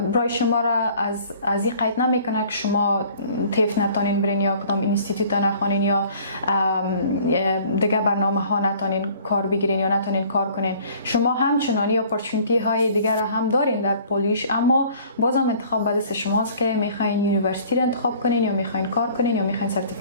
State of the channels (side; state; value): both; inverted; correlation -0.52